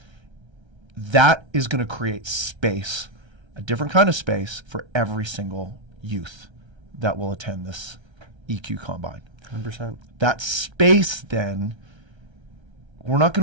That is going to create space, a different kind of space for every single youth that will attend this EQ Combine. 100%. That space then, we're not going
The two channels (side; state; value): left; late; 1.3 ms